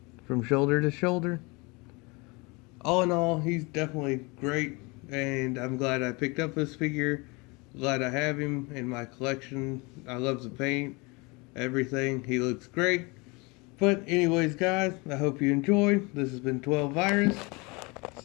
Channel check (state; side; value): quieter; right; 27.3 dB